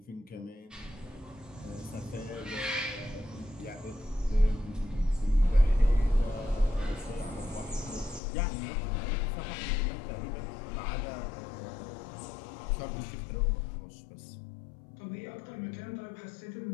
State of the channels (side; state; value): right; drops out; at 8.2 s